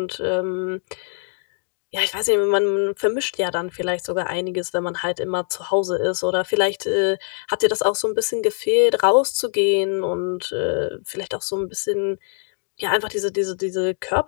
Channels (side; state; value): right; silent; 62 dB below the other